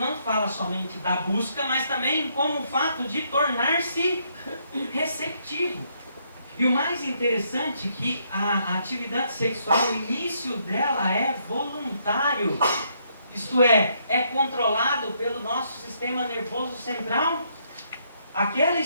fala somente da busca, mas também como o fato de tornar-se receptivo. E o mais interessante é que a atividade sexual, o início dela é voluntário. Isto é controlado pelo nosso sistema nervoso central. Aquela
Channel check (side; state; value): both; inverted; correlation -0.73